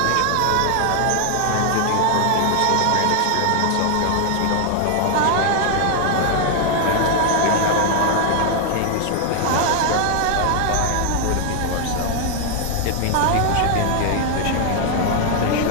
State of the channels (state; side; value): different; both; correlation 0.00